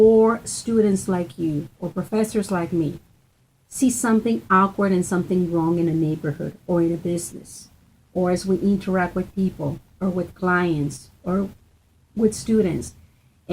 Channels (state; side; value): identical; both; correlation 1.00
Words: students like you or professors like me see something awkward and something wrong in a neighborhood or in a business, or as we interact with people or with clients or with students,